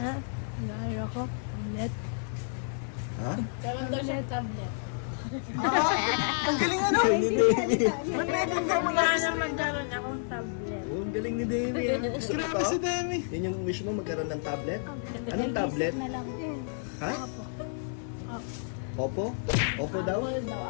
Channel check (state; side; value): silent; right; digital silence